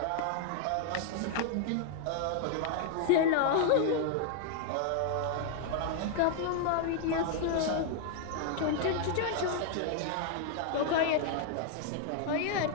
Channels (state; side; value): different; both; correlation 0.00